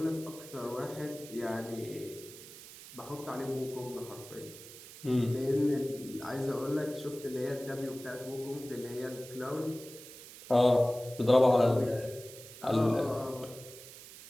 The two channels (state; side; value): noise; right; hiss, 16 dB below the sound